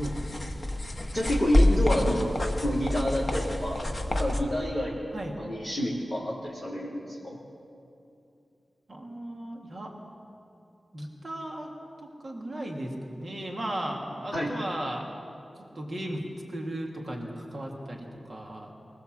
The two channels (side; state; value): both; normal; correlation 0.96